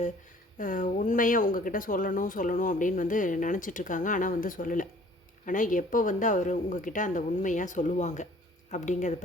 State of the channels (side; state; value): both; normal; correlation 0.54